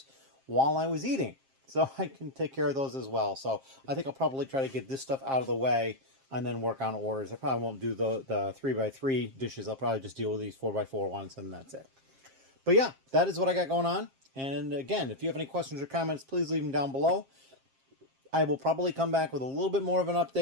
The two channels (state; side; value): late; left; 7.5 ms